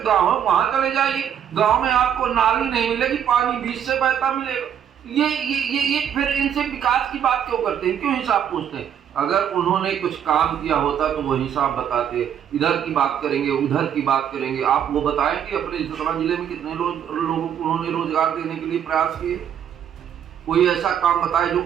गांव है, वहां चले जाइए, गांव में आपको नाली नहीं मिलेगी, पानी बीच से बहता मिलेगा। ये फिर इनसे विकास की बात क्यों करते हैं, क्यों हिसाब पूछते हैं? अगर उन्होंने कुछ काम किया होता तो वो हिसाब बताते, इधर की बात करेंगे, उधर की बात करेंगे। आप वो बताएं कि अपने सतना जिले में कितने लोगों को उन्होंने रोजगार देने के लिए प्रयास किए? कोई ऐसा काम बताए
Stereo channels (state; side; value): quieter; left; 9.1 dB